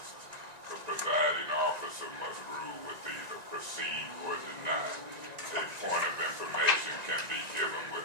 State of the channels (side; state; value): left; late; 1.9 ms